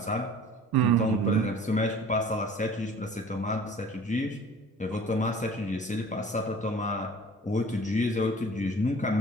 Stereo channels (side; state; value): both; normal; correlation 0.46